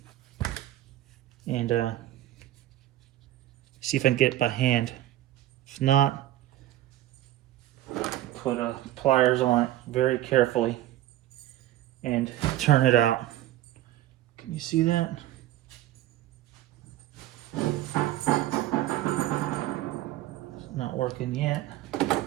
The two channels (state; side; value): quieter; left; 14.3 dB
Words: and see if I can get it by hand. If not, put pliers on it very carefully and turn it out. Can you see that? It's not working yet.